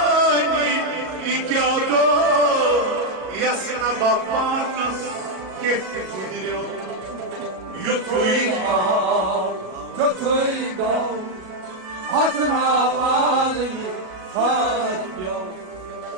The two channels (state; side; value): late; left; 37 ms